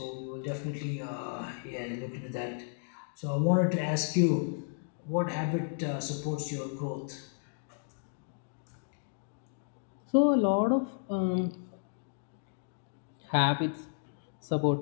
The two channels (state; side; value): silent; right; digital silence